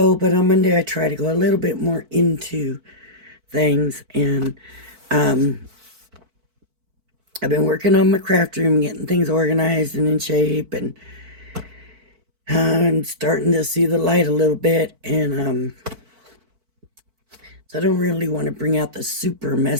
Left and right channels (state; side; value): late; left; 4.5 ms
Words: I try to go a little bit more into things, and I've been working on my craft room, getting things organized and in shape, and I'm starting to see the light a little bit, and so I don't really want to bring out the super